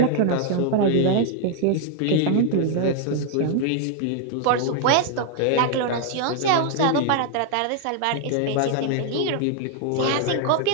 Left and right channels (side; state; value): both; different; correlation 0.00